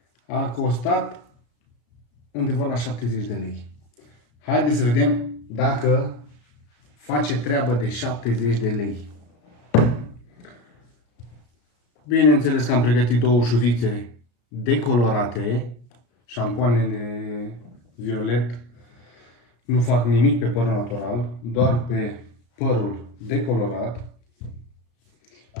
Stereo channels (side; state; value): right; late; 33 ms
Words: a costat undeva la 70 de lei. Haideți să vedem dacă face treabă de 70 de lei. Bineînțeles că am pregătit două șuvițe decolorate. Șampoanele violet nu fac nimic pe părul natural, doar pe părul decolorat.